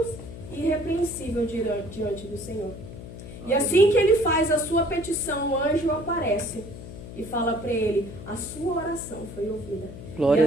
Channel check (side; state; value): left; noise; hum, 12 dB below the sound